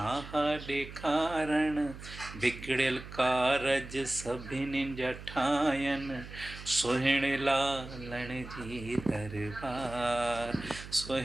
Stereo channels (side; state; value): right; noise; hum, 13 dB below the sound